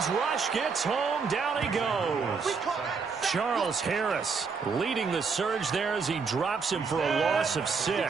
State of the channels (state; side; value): quieter; left; 5.2 dB